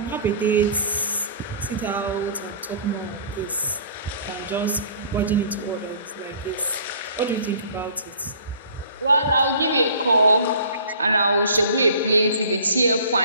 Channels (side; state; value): both; inverted; correlation -0.49